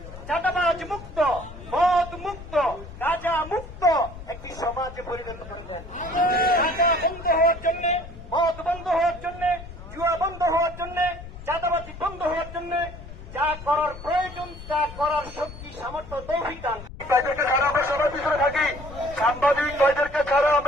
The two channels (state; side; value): noise; left; rumble, 14 dB below the sound